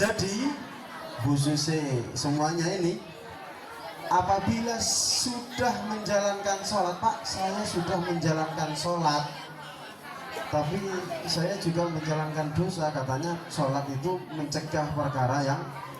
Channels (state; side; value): identical; both; correlation 1.00